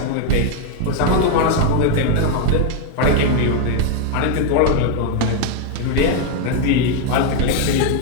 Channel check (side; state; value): both; different; correlation 0.00